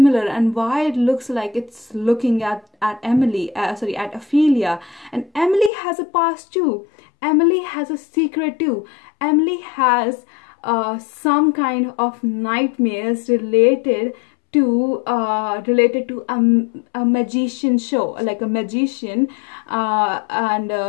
and why it looks like it's looking at Emily, at Ophelia. And Emily has a past too. Emily has a secret too. Emily has some kind of nightmares related to a magician show, like a magician, and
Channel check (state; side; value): drops out; right; at 5.7 s